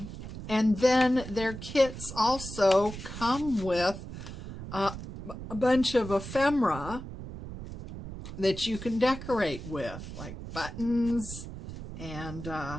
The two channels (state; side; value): noise; right; rumble, 10 dB below the sound